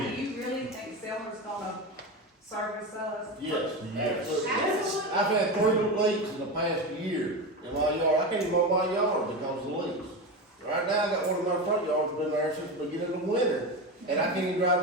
do you really think Selmer's gonna service us? Yes, absolutely. Absolutely. I've had 3 leaks in the past year in my yard. I can't even mow my yard because of the leaks. Right now, I got one of my front yards been there since the beginning of the winter, and I can't even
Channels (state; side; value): normal; both; correlation 0.20